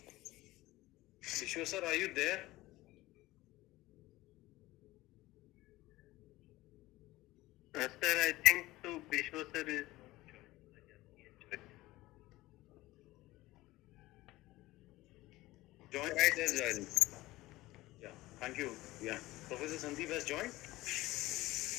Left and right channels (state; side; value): quieter; right; 18.3 dB